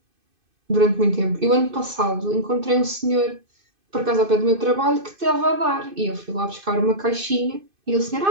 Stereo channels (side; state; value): left; late; 2.5 ms